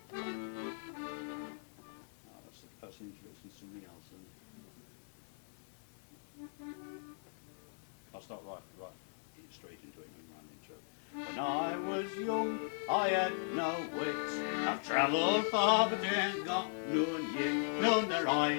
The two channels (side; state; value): right; silent; digital silence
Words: that's introducing something else. I'll start right straight into it in my intro. When I was young, I had no wits. I've travelled far, but ain't got none yet. None that I